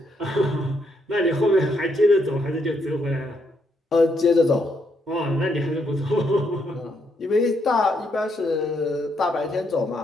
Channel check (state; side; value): normal; both; correlation 0.76